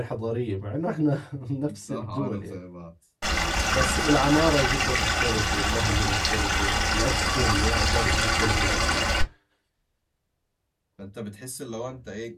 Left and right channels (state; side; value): identical; both; correlation 1.00